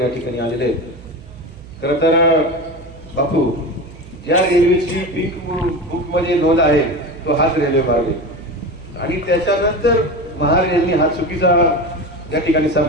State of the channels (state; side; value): noise; right; hum, 19 dB below the sound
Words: या ठिकाणी आलेले आहेत. खरं तर बापू, ज्या रेल्वेची पिंक बुक मध्ये नोंद आहे तो हाच रेल्वे मार्ग आहे आणि त्याच्यानंतर महारेलने हा चुकीचा या ठिकाणी